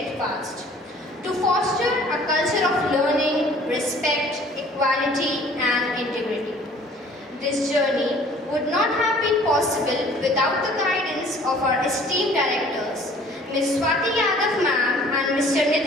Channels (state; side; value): normal; both; correlation 0.52